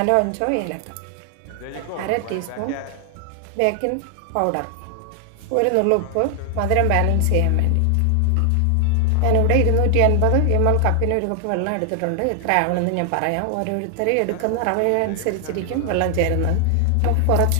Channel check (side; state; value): both; different; correlation 0.00